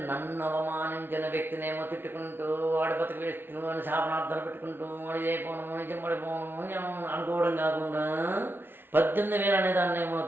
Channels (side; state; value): left; late; 0.10 ms